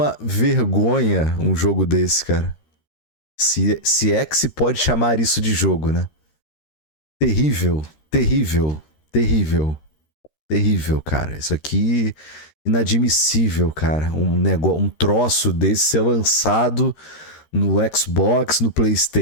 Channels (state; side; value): late; right; 13 ms